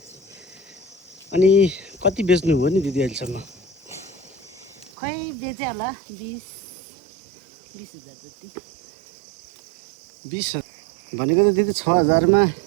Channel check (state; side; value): drops out; left; at 4.9 s